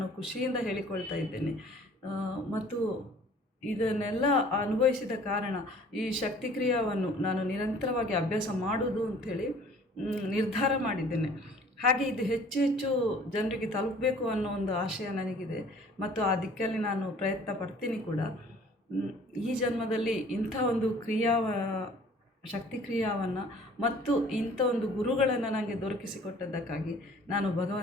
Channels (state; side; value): normal; both; correlation 0.52